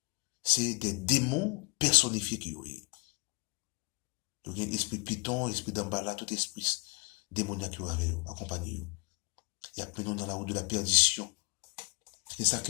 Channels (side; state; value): right; quieter; 27.9 dB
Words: C'est des démons personnifiés qui ont. Donc, l'esprit python, l'esprit d'ambala, tout esprit démoniaque qui avait accompagné. Il y a pris nous dans la route de la perdition. C'est ça